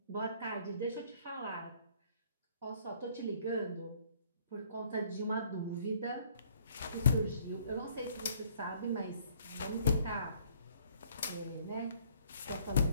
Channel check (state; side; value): inverted; both; correlation -0.61